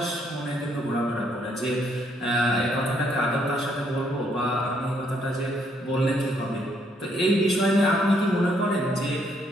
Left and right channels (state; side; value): normal; both; correlation 0.70